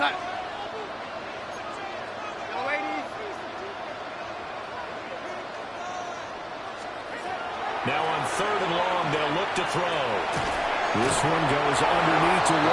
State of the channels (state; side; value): identical; both; correlation 1.00